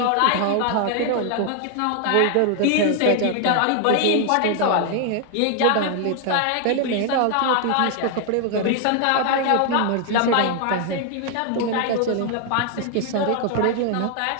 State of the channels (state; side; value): different; both; correlation 0.00